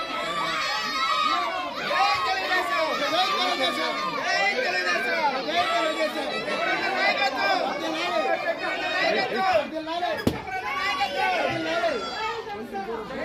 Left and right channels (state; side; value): identical; both; correlation 1.00